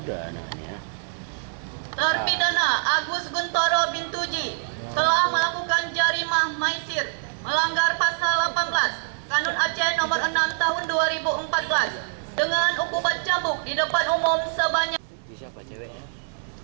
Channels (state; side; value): silent; left; digital silence